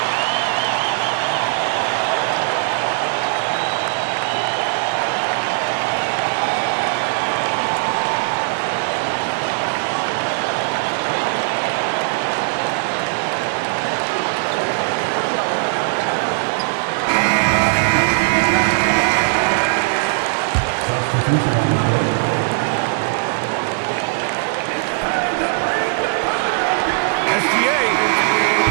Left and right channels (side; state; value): left; silent; digital silence